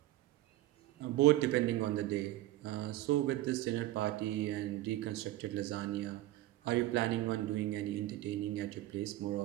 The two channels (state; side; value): quieter; left; 16.0 dB